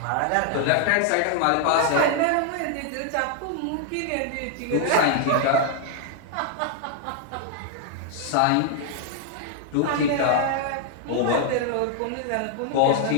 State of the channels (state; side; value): different; both; correlation 0.00